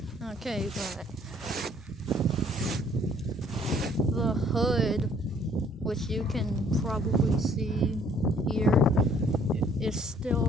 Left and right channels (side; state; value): both; normal; correlation 0.60